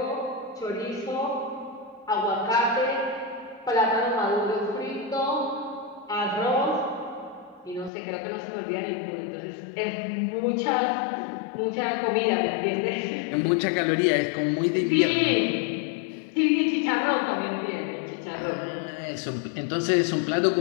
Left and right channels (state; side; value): drops out; right; at 7.9 s